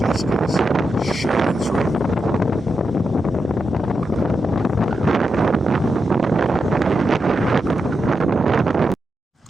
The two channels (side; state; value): both; normal; correlation 0.87